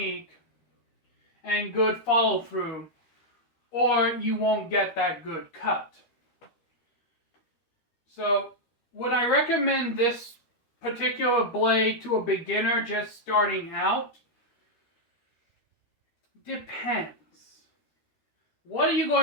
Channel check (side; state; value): right; late; 13 ms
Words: and good follow-through, or you won't get that good cut. So, would I recommend this particular blade to a beginner just starting out? Depends. What are you